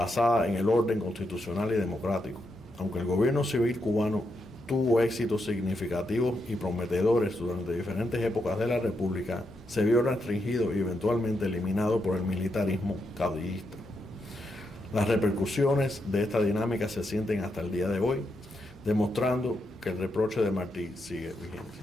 en el orden constitucional y democrático. Aunque el gobierno civil cubano tuvo éxitos significativos y prometedores durante diferentes épocas de la República, se vio restringido y eventualmente eliminado por el militarismo caudillista. Las repercusiones de esta dinámica se sienten hasta el día de hoy, demostrando que el reproche de Martí sigue vigente.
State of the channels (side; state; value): both; normal; correlation 0.82